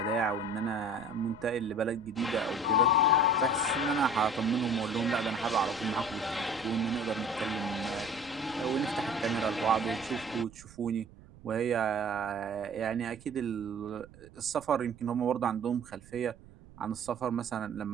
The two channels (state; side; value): noise; right; rumble, 22 dB below the sound